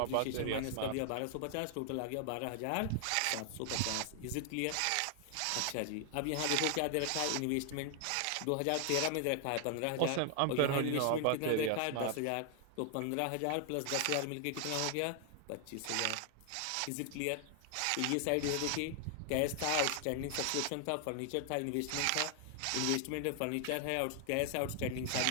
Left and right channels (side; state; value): both; different; correlation 0.00